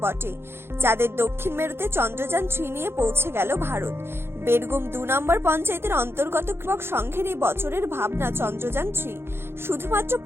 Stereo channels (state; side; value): late; left; 0.11 ms